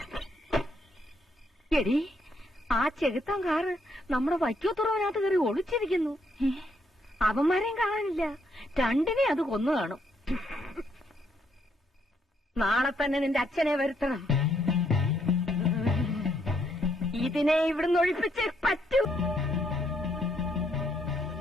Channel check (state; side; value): normal; both; correlation 0.73